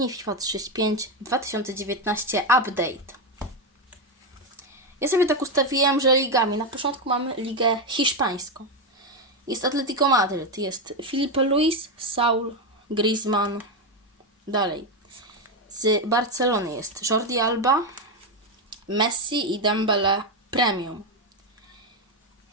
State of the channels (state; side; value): normal; both; correlation 0.08